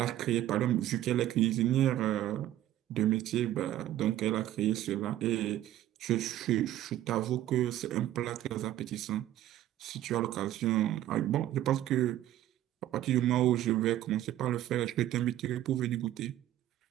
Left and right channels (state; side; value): quieter; left; 13.2 dB